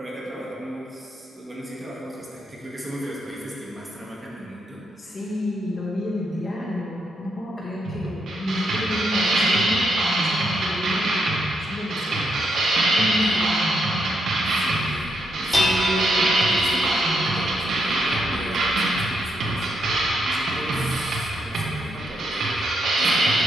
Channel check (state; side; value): normal; both; correlation 0.79